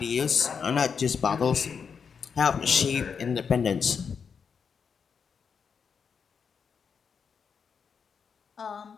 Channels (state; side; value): quieter; right; 6.3 dB